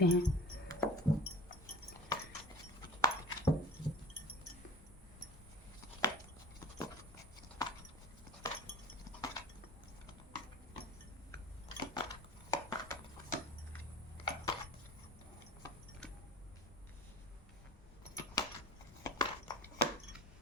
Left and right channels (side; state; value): both; normal; correlation 0.41